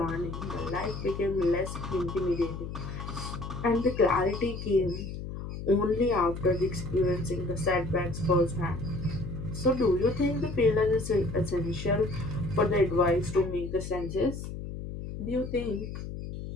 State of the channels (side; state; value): left; noise; hum, 8 dB below the sound